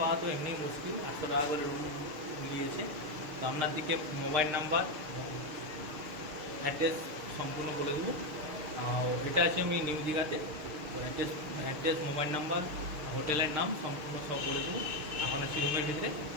তো এমনি মুশকিল। 800 টাকা করে রুম নিয়েছে। তো আপনার দিকে মোবাইল নাম্বার এবং অ্যাড্রেস সম্পূর্ণ বলে দেবো। এটা আছে আমি নিউ দীঘাতে। তো অ্যাড্রেস, মোবাইল নাম্বার, হোটেলের নাম সম্পূর্ণ সব বলে দেবো। এখন আছি রুমের ভিতরে।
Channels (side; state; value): left; late; 6.5 ms